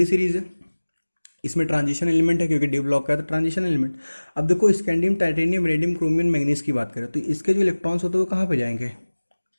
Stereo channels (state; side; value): inverted; both; correlation -1.00